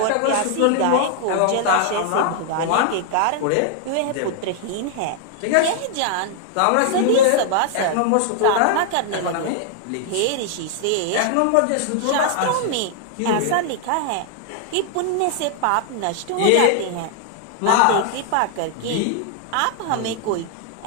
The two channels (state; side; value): different; both; correlation 0.00